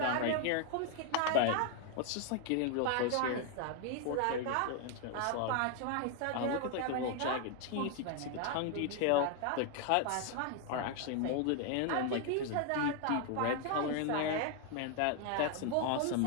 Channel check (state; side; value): different; both; correlation 0.00